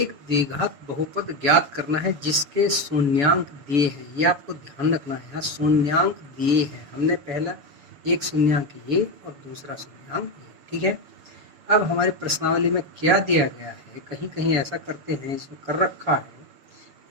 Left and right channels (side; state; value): left; late; 7.1 ms